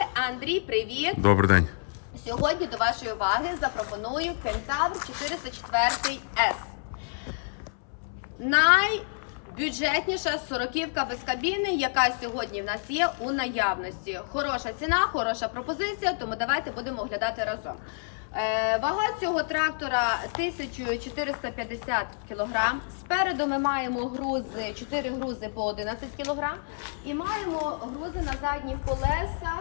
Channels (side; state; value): right; silent; 59 dB below the other